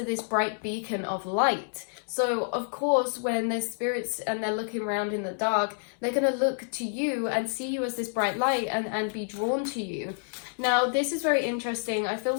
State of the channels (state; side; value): silent; right; 59 dB below the other